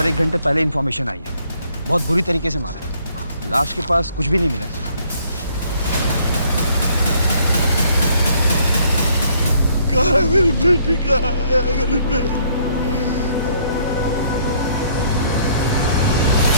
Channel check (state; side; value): inverted; both; correlation -0.64